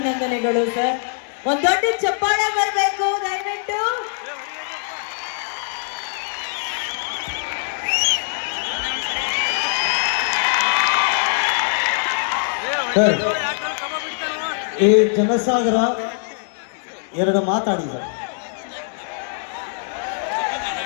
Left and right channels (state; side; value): silent; right; digital silence